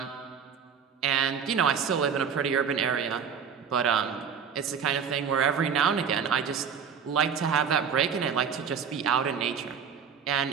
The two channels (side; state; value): left; quieter; 6.9 dB